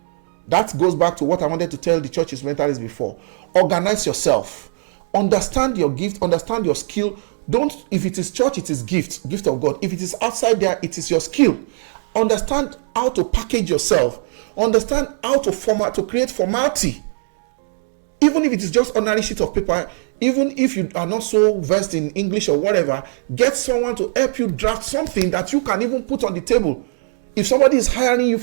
That goes back to what I wanted to tell the church instrumentalists before. Organize yourself. Understand your gift, understand your skill. Don't, if it is church, it is gift of God. If it is outside there, it is your skill. Understand how to package yourself. Understand how to create formality. Even if it is just ordinary sheet of paper, even if you are not so versed in English or whatever, get someone to help you draft something that you can even put on the table. If somebody is hiring you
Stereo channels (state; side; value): silent; left; digital silence